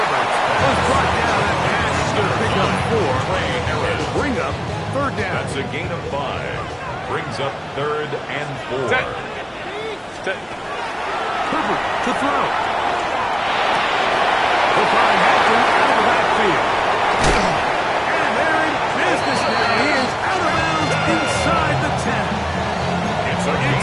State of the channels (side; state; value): both; identical; correlation 1.00